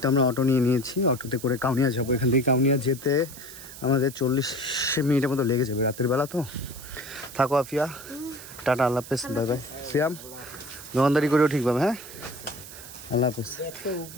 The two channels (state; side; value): noise; right; hiss, 15 dB below the sound